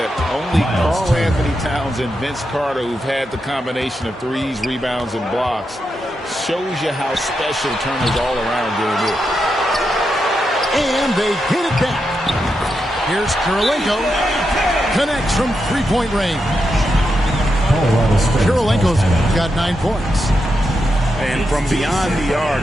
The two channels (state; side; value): normal; both; correlation 0.86